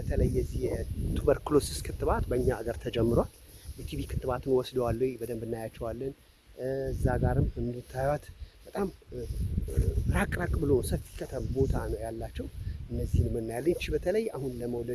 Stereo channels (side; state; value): both; identical; correlation 1.00